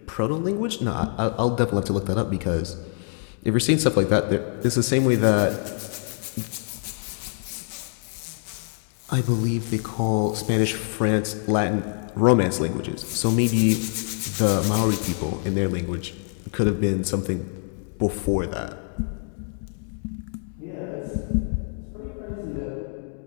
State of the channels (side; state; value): right; silent; 62 dB below the other